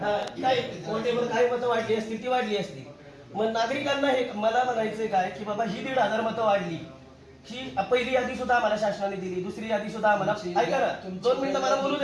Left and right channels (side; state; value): both; identical; correlation 1.00